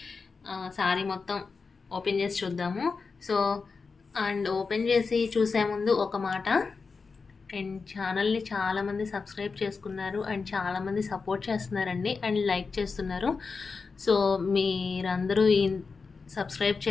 సారీ మొత్తం ఓపెన్ చేసి చూద్దాము. సో అండ్ ఓపెన్ చేసి చూసే ముందు ఒక మాట, అండ్ ఛానల్ని చాలామంది సబ్స్క్రైబ్ చేసుకున్నారు అండ్ చాలామంది సపోర్ట్ చేస్తున్నారండి అండ్ లైక్ చేస్తున్నారు. సో మీరందరూ సబ్స్క్రైబ్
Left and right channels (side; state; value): right; quieter; 4.7 dB